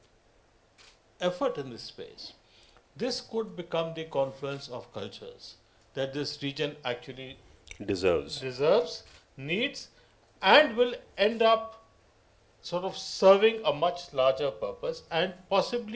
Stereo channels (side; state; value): both; identical; correlation 1.00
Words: effort in this space, this could become the confluence of cultures that this region actually Deserves. needs, and will end up sort of serving a much larger purpose and